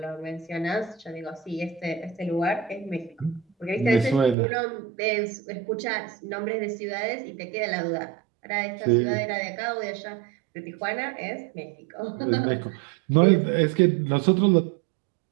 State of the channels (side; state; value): left; drops out; at 4.4 s